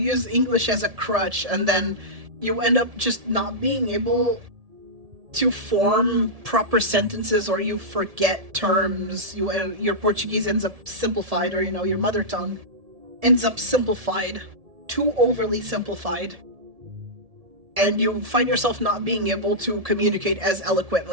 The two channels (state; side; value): late; left; 1.7 ms